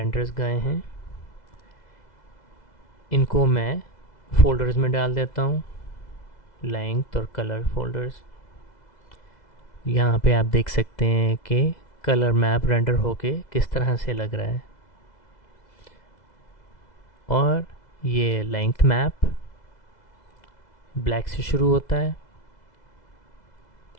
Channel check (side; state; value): right; late; 2.0 ms